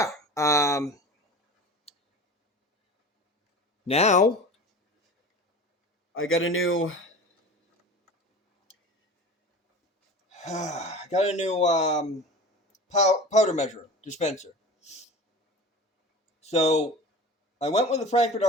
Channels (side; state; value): both; normal; correlation 0.36